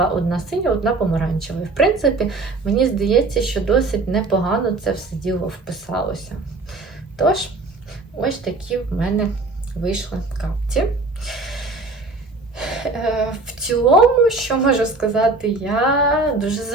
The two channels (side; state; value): left; quieter; 3.4 dB